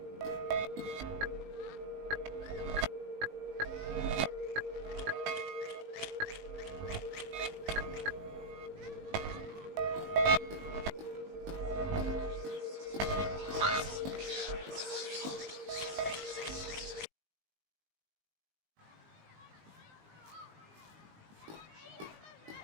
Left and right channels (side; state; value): left; late; 19 ms